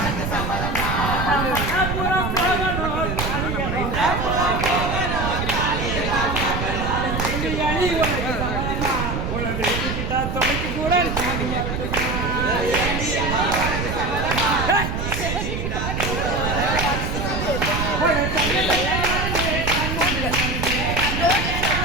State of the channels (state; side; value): noise; right; rumble, 2 dB below the sound